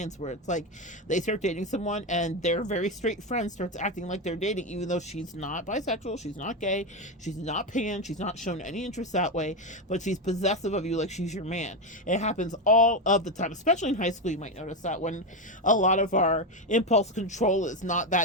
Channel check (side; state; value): both; normal; correlation 0.12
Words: where it's like they start dating someone and their very straight friend starts acting like they're dating, even though she's not bisexual, she's not gay, she's not pan, she's not shown any interest that way, but she's possessive of you like she's your man. It happens all of the time, especially in high school. You might notice that when a lot of our impulse control is not